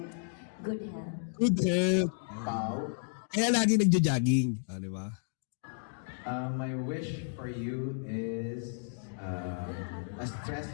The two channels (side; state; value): right; silent; digital silence